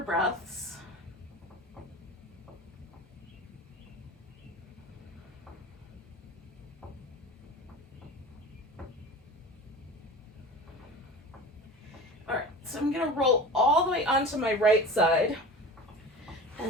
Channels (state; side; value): normal; both; correlation 0.35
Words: breaths. So I'm going to roll all the way onto my right side,